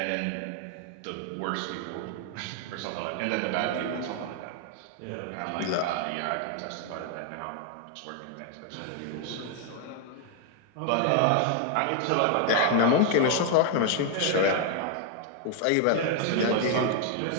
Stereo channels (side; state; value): both; different; correlation 0.00